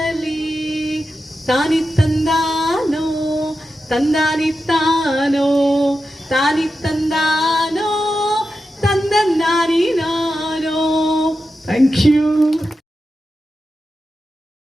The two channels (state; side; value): normal; both; correlation 0.90